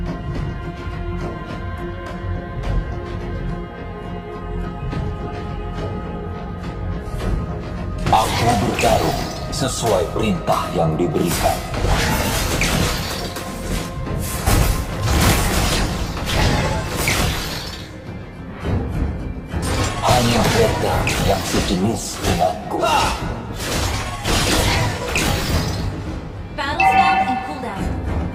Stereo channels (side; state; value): both; identical; correlation 1.00